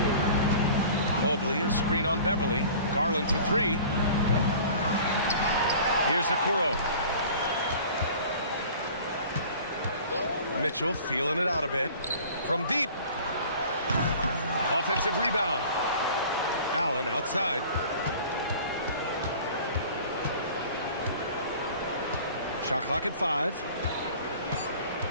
Mobley, a screen on Beverly. Garland for 3. Here's Okoro. Mitchell feeling it out a bit. From deep. Offensive rebound. Allen outside. Shot clock at 5.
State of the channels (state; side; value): inverted; both; correlation -0.45